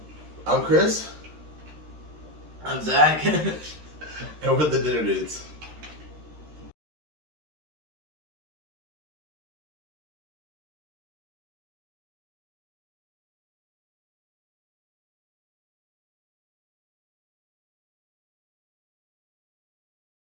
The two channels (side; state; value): left; late; 13 ms